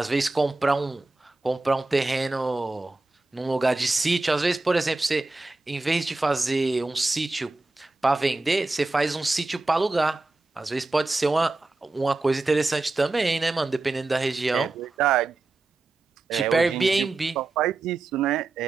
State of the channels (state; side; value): quieter; left; 3.2 dB